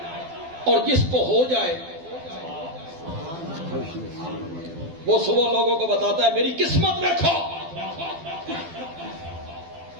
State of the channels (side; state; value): left; late; 12 ms